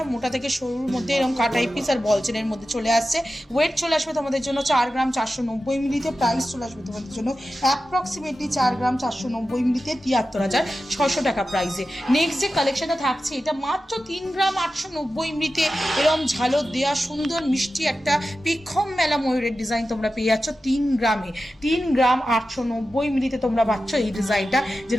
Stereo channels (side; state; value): both; normal; correlation 0.93